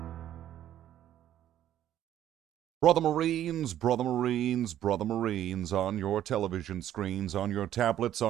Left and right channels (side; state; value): left; quieter; 11.7 dB